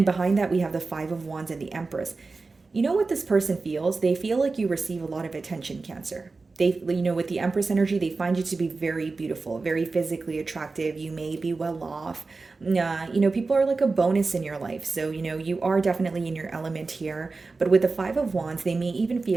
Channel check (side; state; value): left; quieter; 3.9 dB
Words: behind that, we have the Five of Wands and the Empress. You know what this person feels? They feel like you receive a lot of attention, Cancer. They, with the Empress energy, they find you to be very beautiful, very physically attractive. You may be well off. People are like a bonus in your life. So, you are definitely in your element here. But with the Five of Wands, they may even